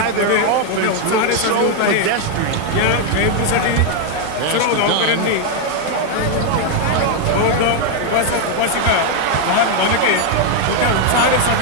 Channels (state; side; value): different; both; correlation 0.01